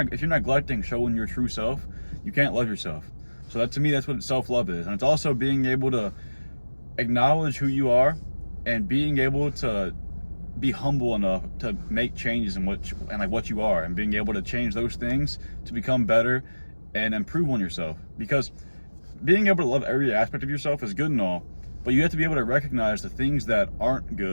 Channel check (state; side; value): inverted; both; correlation -1.00